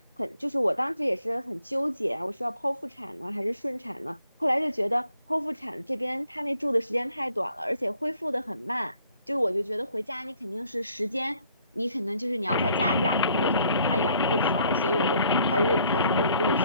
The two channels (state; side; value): inverted; both; correlation -0.64